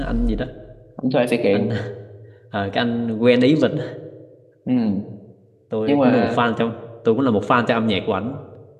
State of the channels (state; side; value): identical; both; correlation 1.00